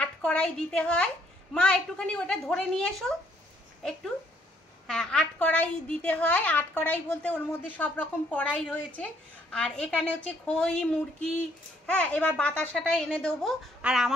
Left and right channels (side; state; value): both; normal; correlation 0.67